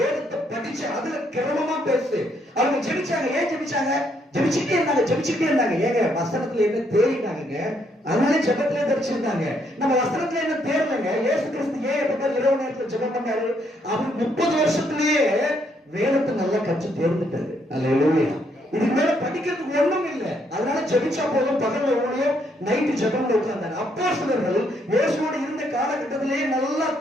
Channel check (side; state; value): both; normal; correlation 0.72